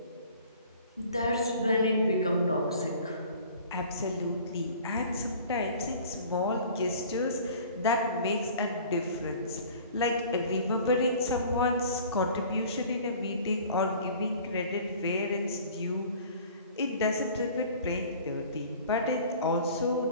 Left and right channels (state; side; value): inverted; both; correlation -0.47